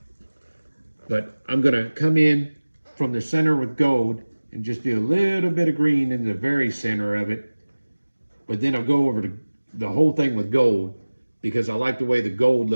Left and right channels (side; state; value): both; inverted; correlation -1.00